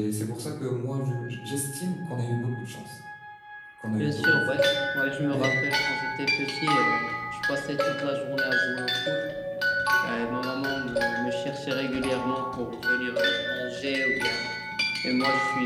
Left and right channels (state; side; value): identical; both; correlation 1.00